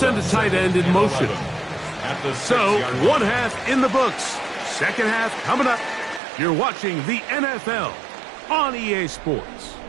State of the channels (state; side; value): drops out; left; at 6.2 s